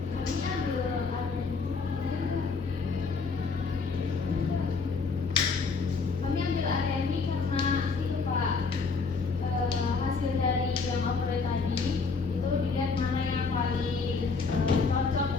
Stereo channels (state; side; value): quieter; right; 4.7 dB